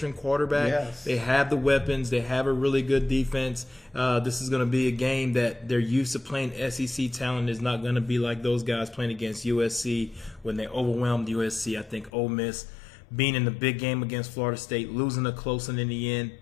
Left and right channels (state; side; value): drops out; right; at 12.1 s